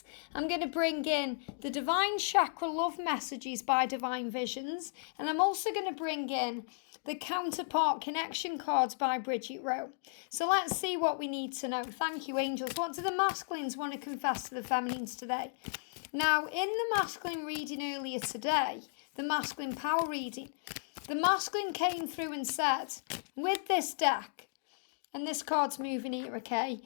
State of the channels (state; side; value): silent; right; digital silence